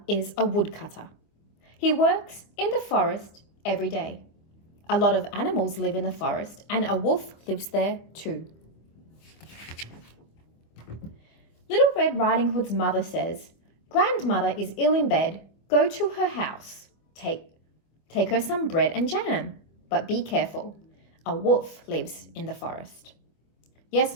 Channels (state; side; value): late; right; 25 ms